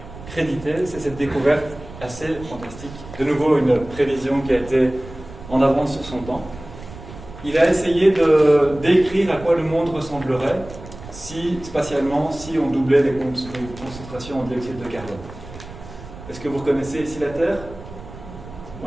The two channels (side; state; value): right; noise; rumble, 15 dB below the sound